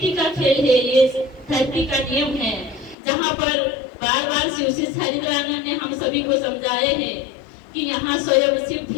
का खेल है, ये धरती का नियम है, जहाँ पर बार बार शिव से हरिद्रानंद ने हम सभी को समझाए हैं कि यहाँ स्वयं शिव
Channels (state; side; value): drops out; right; at 3.0 s